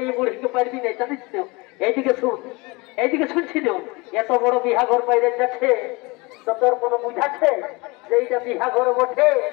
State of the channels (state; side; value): quieter; right; 25.5 dB